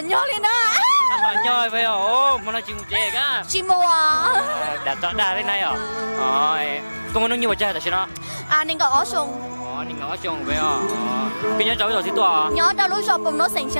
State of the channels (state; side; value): inverted; both; correlation -1.00